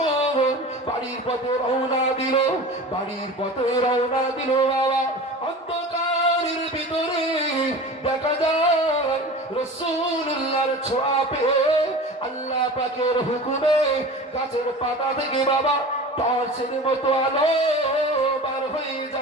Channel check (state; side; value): normal; both; correlation 0.35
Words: বাড়ির পথে রওনা দিল, বাড়ির পথে রওনা দিল বাবা, অন্ধকারের ভিতরে দেখা যায় রাসূলুল্লাহর ছোঁয়া পেয়ে আল্লাহ পাকের হুকুমে গাছের পাতা থেকে বাবা টর্চের মতো আলো বার হয়ে